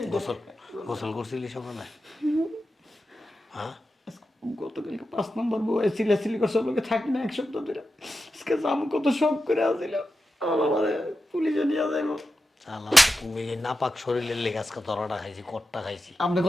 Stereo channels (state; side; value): normal; both; correlation 0.90